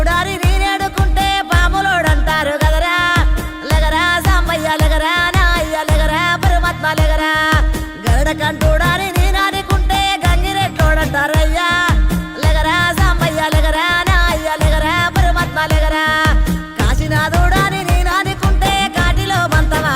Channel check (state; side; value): identical; both; correlation 1.00